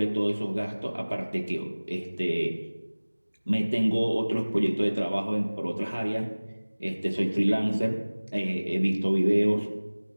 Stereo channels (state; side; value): inverted; both; correlation -1.00